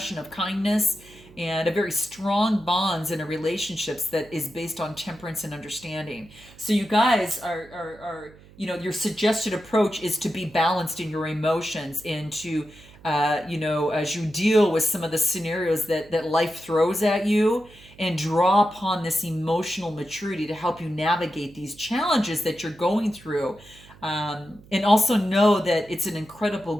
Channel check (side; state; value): right; noise; hum, 23 dB below the sound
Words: of kindness, and a very strong bonds in a relationships that is based on temperance and understanding. So you guys are your suggested approach is to be balanced in your emotions and to, as you deal with some of the scenarios that life throws at you, and draw upon this emotional maturity to help you navigate these challenges that you're going through. And also know that it's an incredible